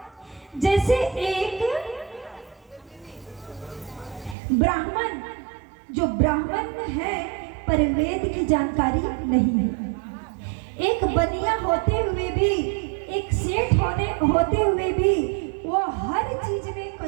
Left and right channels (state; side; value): drops out; left; at 4.4 s